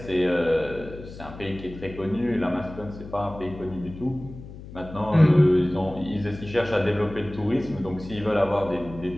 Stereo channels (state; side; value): noise; left; hum, 14 dB below the sound